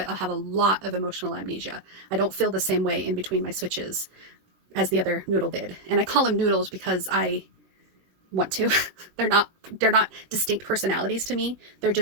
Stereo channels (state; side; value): late; left; 21 ms